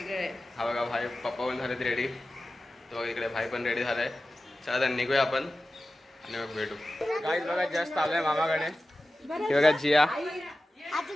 आहे. हा बघा भाई, पप्पा पण झालेत रेडी, तो इकडे भाई पण रेडी झालाय. चला तर निघूया आपण आणि मग भेटू. गाईज बघा जस्ट आलोय मामाकडे. हे बघा जिया,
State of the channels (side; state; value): both; normal; correlation 0.94